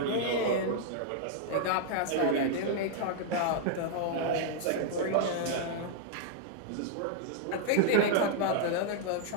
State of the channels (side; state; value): both; different; correlation -0.01